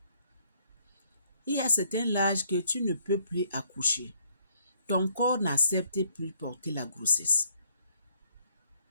Il y a certain âge que tu ne peux plus accoucher. Ton corps n'accepte plus porter la grossesse.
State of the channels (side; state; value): both; inverted; correlation -0.67